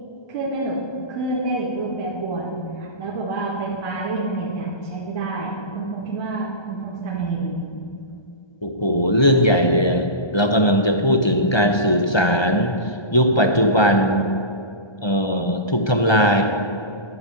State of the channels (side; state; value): right; late; 1.3 ms